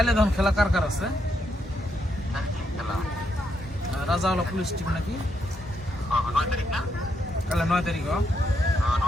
ধন খেলা কার কার আছে? রাজাওয়ালা পুলিশ টিম নাকি? কালে 9 তারিখ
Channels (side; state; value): both; normal; correlation 0.79